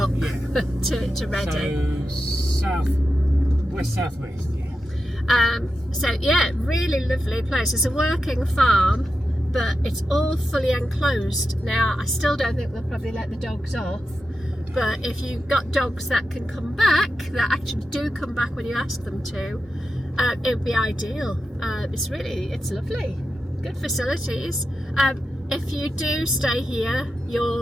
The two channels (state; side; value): normal; both; correlation 0.90